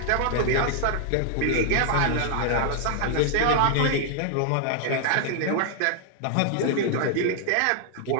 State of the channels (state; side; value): different; both; correlation 0.00